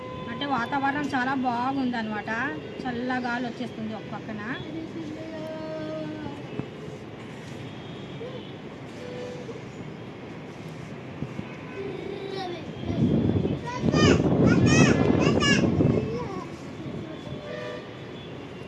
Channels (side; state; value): both; identical; correlation 1.00